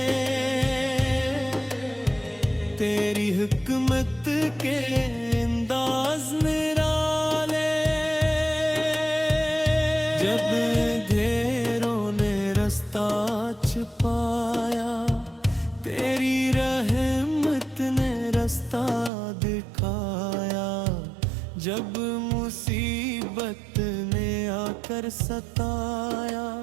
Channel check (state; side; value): drops out; left; at 19.1 s